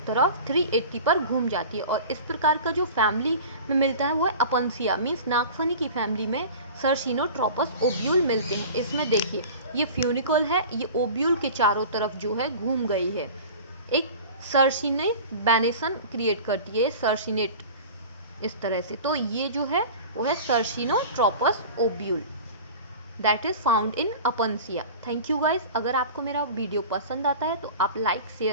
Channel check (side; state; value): both; inverted; correlation -0.37